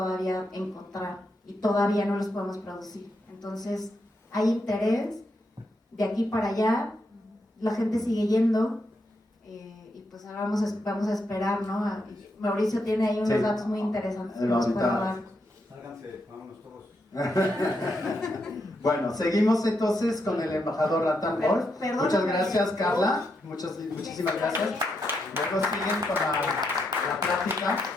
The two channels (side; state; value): both; normal; correlation 0.81